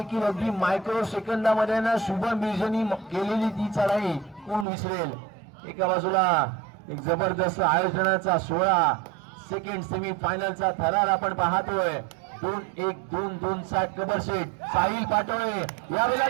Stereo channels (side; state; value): left; drops out; at 4.7 s